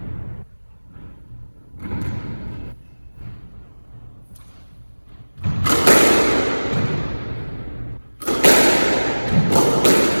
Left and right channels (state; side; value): inverted; both; correlation -1.00